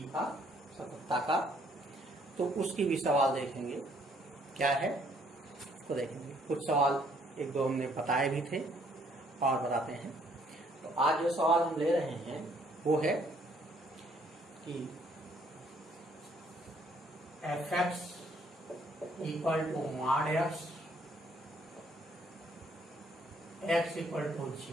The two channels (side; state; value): both; normal; correlation 0.65